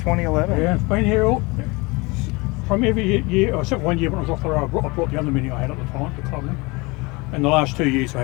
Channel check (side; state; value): right; quieter; 25.4 dB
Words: yeah, it's been here from every year, except one year when I was off the road. I brought the other Mini I had at the time, the Club Mini. And the last 2 years I